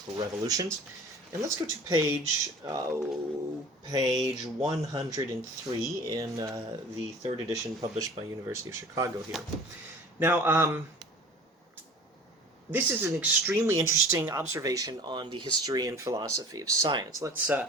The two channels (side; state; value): both; normal; correlation 0.43